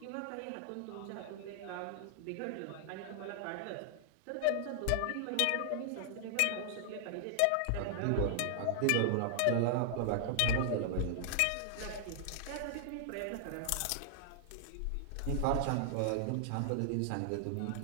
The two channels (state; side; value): different; both; correlation -0.01